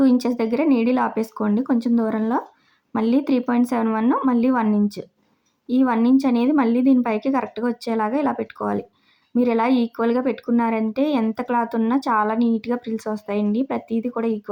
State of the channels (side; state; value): both; identical; correlation 1.00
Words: ఇంచెస్ దగ్గర నీడిల్ ఆపేసుకోండి కొంచెం దూరంలో. మళ్ళీ 3.71, మళ్ళీ 1 ఇంచ్. ఈ 1 ఇంచ్ అనేది మళ్ళీ దీనిపైకి కరెక్ట్గా వచ్చేలాగా ఇలా పెట్టుకోవాలి. మీరు ఇలా ఈక్వల్గా పెట్టుకున్నారంటే ఎంత క్లాత్ ఉన్నా చాలా నీట్గా ప్రిల్స్ వస్తాయండి. ప్రతిదీ కూడా